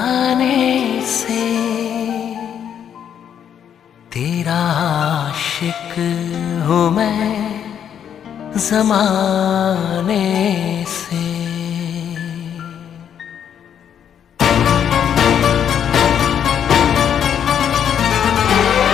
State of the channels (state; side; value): quieter; right; 8.8 dB